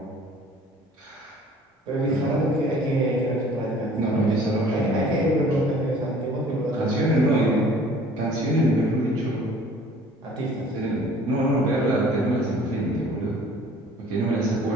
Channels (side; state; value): both; normal; correlation 0.51